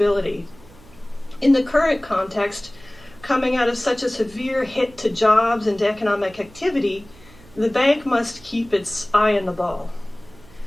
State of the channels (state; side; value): noise; right; hum, 24 dB below the sound